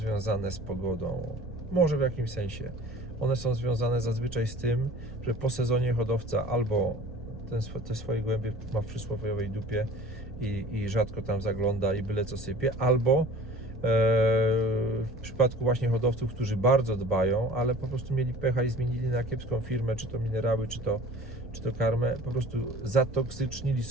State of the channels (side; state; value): both; normal; correlation 0.45